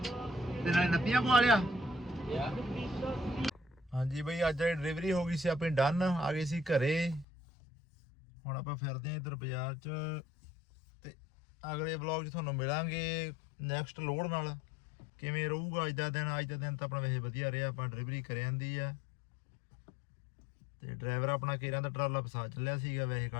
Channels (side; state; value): right; drops out; at 7.2 s